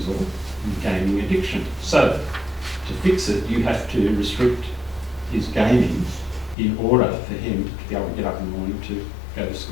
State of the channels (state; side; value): drops out; right; at 6.6 s